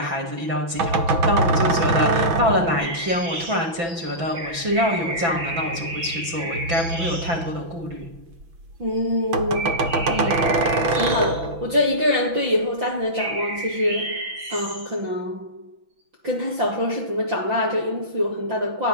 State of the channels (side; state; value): left; late; 6.0 ms